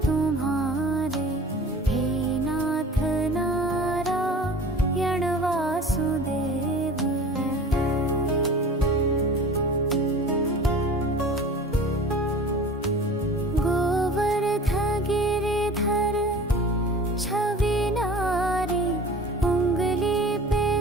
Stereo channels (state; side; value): normal; both; correlation 0.42